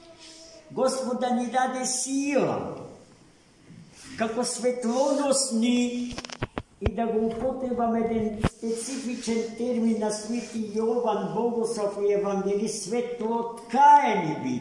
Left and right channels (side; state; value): both; identical; correlation 1.00